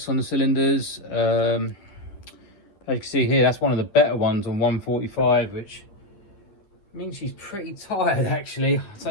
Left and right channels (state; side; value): late; right; 10 ms